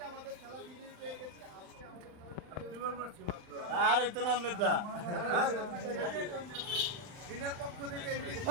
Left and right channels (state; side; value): late; left; 39 ms